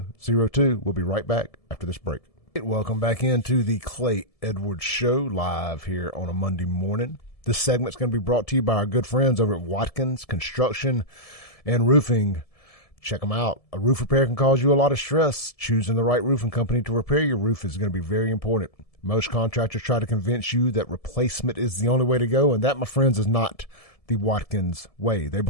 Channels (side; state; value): right; late; 1.7 ms